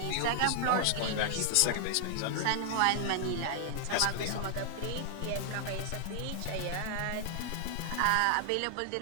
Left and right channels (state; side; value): different; both; correlation 0.00